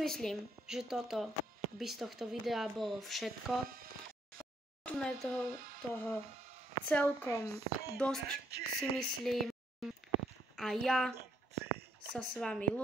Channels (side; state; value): both; normal; correlation 0.72